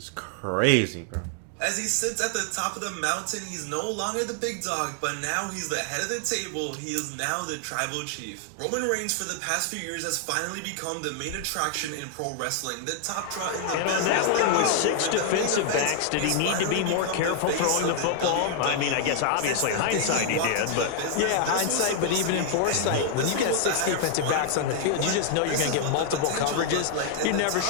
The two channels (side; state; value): both; different; correlation 0.00